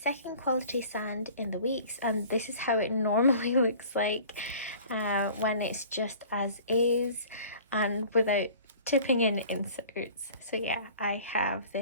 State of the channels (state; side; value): inverted; both; correlation -0.46